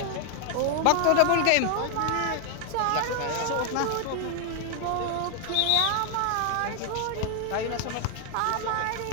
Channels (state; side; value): different; both; correlation 0.00